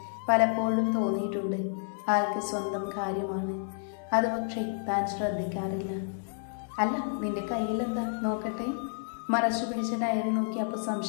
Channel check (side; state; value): right; silent; 58 dB below the other